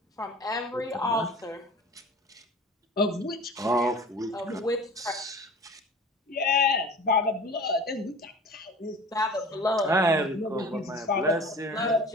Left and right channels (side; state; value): both; normal; correlation 0.41